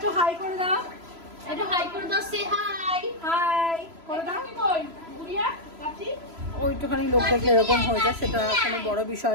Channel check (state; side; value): late; left; 3.0 ms